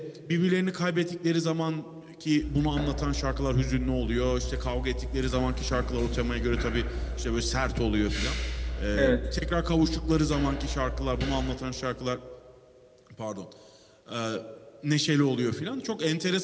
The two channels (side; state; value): both; identical; correlation 1.00